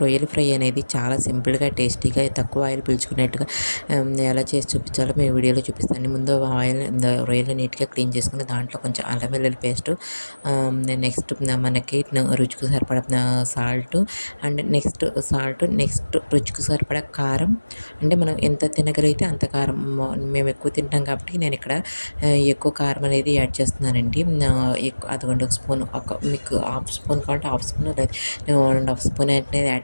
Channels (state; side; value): inverted; both; correlation -1.00